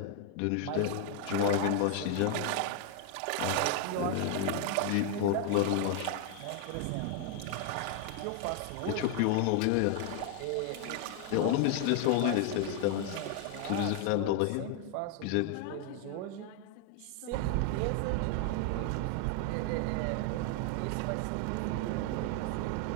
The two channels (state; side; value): different; both; correlation 0.00